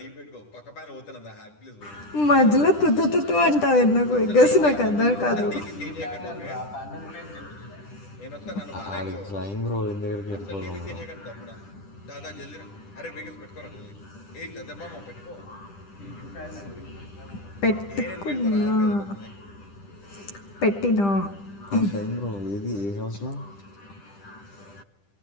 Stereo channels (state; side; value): late; right; 10 ms